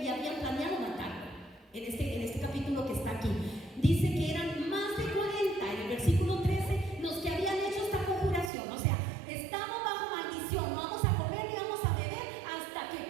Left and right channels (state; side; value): drops out; left; at 8.5 s